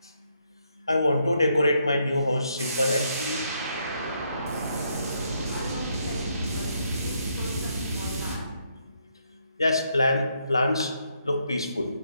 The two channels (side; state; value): both; inverted; correlation -0.75